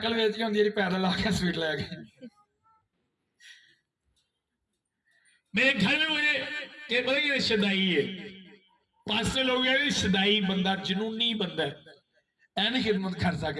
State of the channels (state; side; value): identical; both; correlation 1.00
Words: बेच के होंगी पैदल आके स्वीट ले गए। मेरे घर में मुझे पता कि शदाई है, पास लोग शदाई बंदा, जनूनी बंदा है, ऐ नहीं खिदमत कर